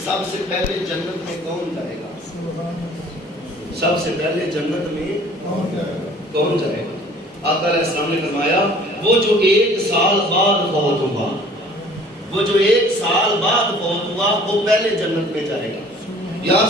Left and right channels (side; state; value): both; normal; correlation 0.52